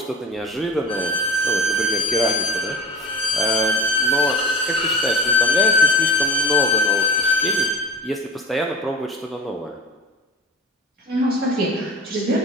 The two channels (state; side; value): normal; both; correlation 0.33